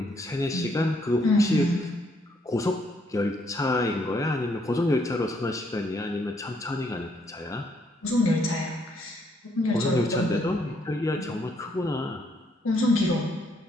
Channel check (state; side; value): normal; both; correlation 0.71